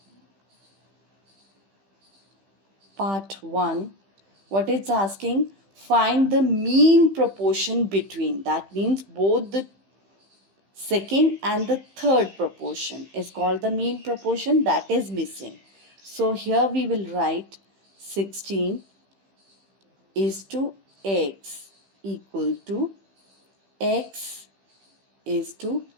Part 1. What it's asking? Find the mean proportion between. That means both the second and the third proportion is called the mean proportion, that is missing. So here we will write 16 is to x equal to x is to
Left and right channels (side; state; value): left; late; 15 ms